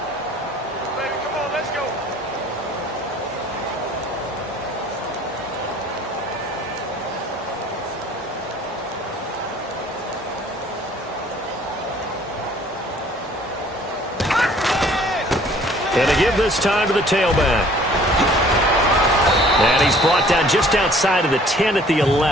Baby, come on, let's go. And to give this time to the tailback. And he's brought down just outside of the 10 at the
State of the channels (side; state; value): both; normal; correlation 0.55